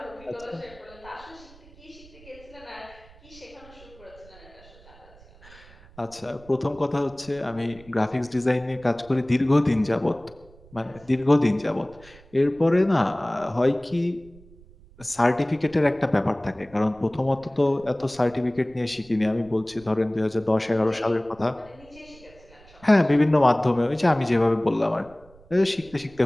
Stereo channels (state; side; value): noise; right; rumble, 24 dB below the sound